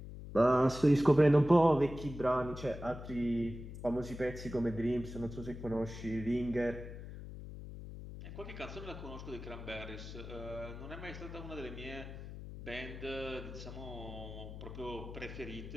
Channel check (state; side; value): noise; left; hum, 11 dB below the sound